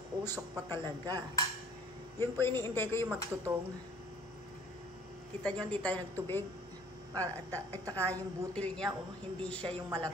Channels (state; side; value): normal; both; correlation 0.54